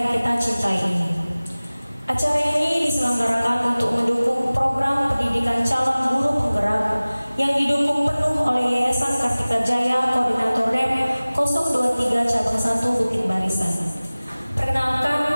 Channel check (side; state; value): both; inverted; correlation -0.99